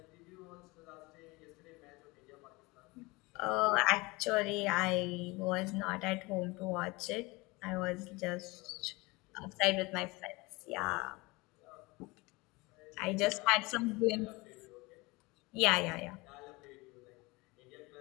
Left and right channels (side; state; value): right; quieter; 24.1 dB